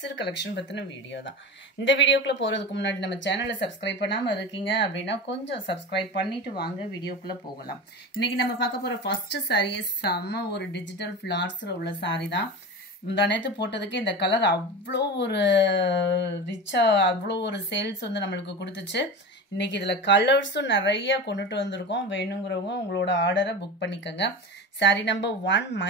கலெக்ஷன் பத்தின வீடியோ தான். இந்த வீடியோக்குள்ள போறதுக்கு முன்னாடி நம்ம சேனலை சப்ஸ்கிரைப் பண்ணாம இருக்கீங்க அப்படின்னா கொஞ்சம் சப்ஸ்கிரைப் பண்ணிட்டு வாங்க வீடியோக்குள்ள போகலாம். இன்னைக்கு நம்ம பார்க்க போற ஃபர்ஸ்ட் saree செம்ம ஒரு டிஜிட்டல் ஃபிளார்ஸ்ல உள்ள saree தான். முந்தானேத்து போட்டதுக்கு இந்த கலர் அவ்வளோ ஒரு ரிச்சா அவ்வளோ ஒரு சேல்ஸ் வந்து நம்மளுக்கு கொடுத்துச்சு. இன்னைக்கு இதுல கலர்ஸும் நிறைய கொண்டுட்டு வந்திருக்கோம். வேணுங்கிறவங்க உங்களோட ஆர்டரை புக் பண்ணிக்கோங்க. saree number 1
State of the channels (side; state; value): both; normal; correlation 0.28